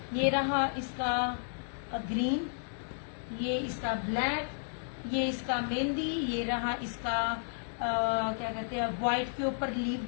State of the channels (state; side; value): silent; right; digital silence